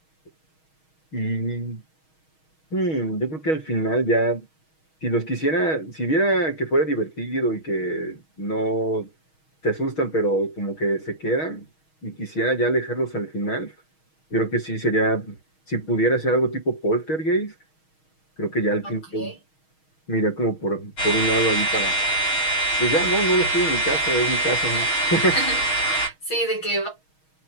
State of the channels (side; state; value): right; late; 6.3 ms